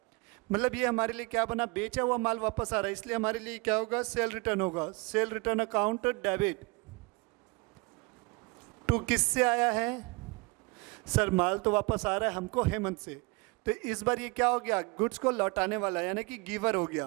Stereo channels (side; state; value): left; quieter; 27.2 dB